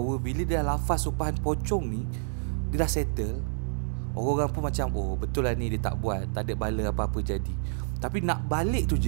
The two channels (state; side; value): silent; left; digital silence